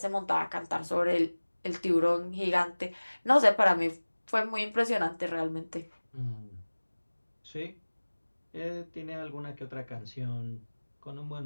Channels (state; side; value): inverted; both; correlation -1.00